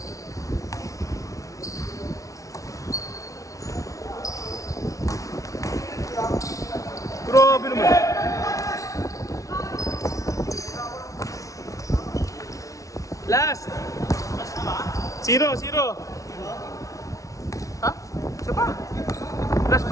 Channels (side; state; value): right; late; 0.16 ms